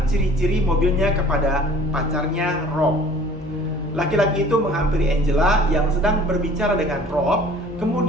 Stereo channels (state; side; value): normal; both; correlation 0.50